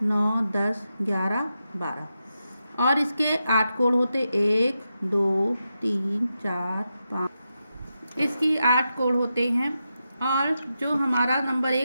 9 10 11 12। और इसके 8 कोण होते, 1 2 3 4 5, इसकी 8 कोण होते हैं। और जो हमारा नंबर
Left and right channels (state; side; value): inverted; both; correlation -0.88